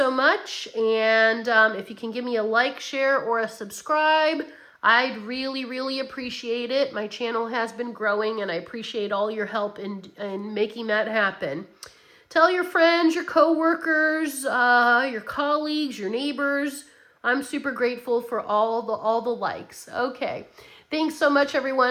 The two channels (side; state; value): both; identical; correlation 1.00